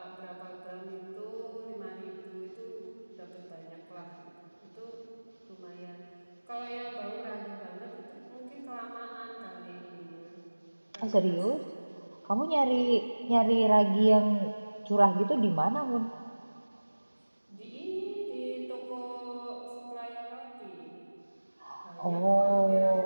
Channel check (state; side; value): inverted; both; correlation -1.00